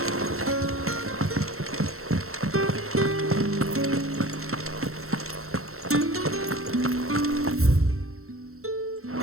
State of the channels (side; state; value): left; late; 0.63 ms